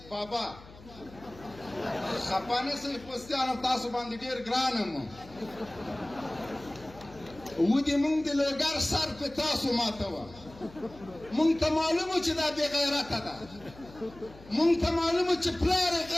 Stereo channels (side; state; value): left; noise; hum, 20 dB below the sound